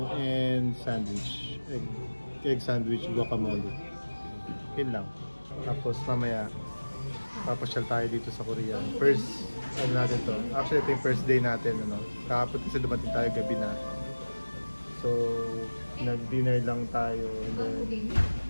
and sandwich. Egg sandwich, guacamole. Yun lang. Tapos mamaya papasyal tayo dito sa Korea. First, ano natin to? Actually, ito yung first day natin, ano? Kahapon kasi dumating tayo gabi na. So, nag-dinner lang tayo and then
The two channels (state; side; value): inverted; both; correlation -1.00